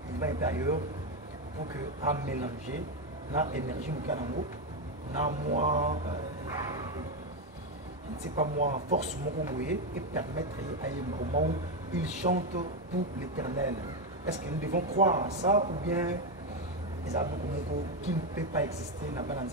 il va être ailleurs pour que à mélanger l'énergie du canamo, moi, je ne sais pas moi, force et permettre à un moment où il chante pour l'éternel. Est-ce que nous devons croire à ça ou bien les Abokomoko qui ne peut pas exister dans le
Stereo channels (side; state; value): both; normal; correlation 0.08